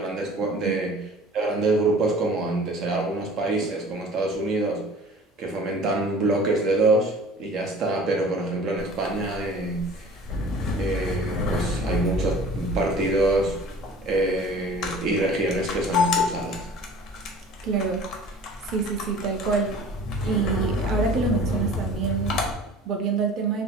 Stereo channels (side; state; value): both; normal; correlation 0.45